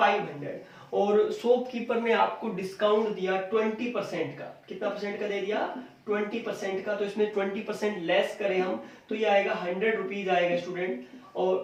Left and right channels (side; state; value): both; identical; correlation 1.00